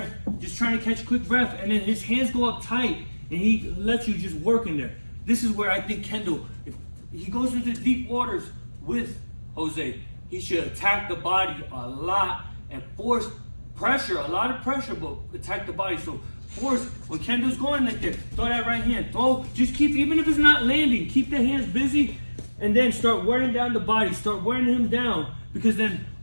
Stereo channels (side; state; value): both; inverted; correlation -1.00